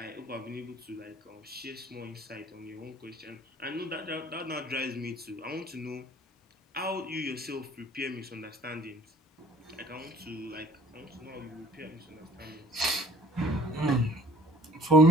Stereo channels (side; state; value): both; normal; correlation 0.52